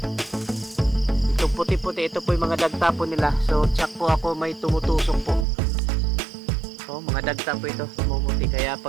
Ito puti-puti, ito po yung mga dagta po nila. So, tsak po ako, may tumutusok po. Oh, mga dagta po ito, tumuti. Kaya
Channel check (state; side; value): drops out; left; at 5.5 s